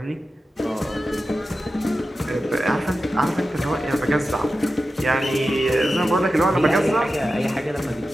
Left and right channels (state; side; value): normal; both; correlation 0.92